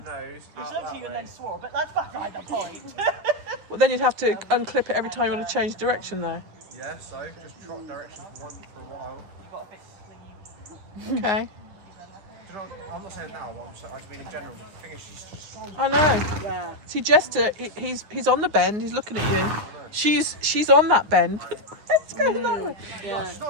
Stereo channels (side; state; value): left; late; 9.7 ms